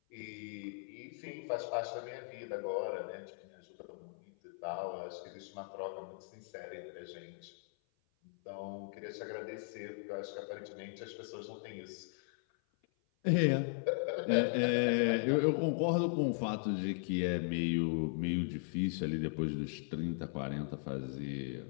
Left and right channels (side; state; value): right; silent; 52 dB below the other